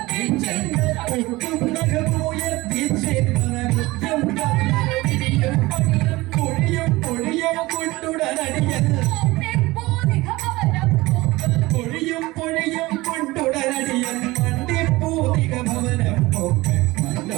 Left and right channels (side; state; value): left; quieter; 20.3 dB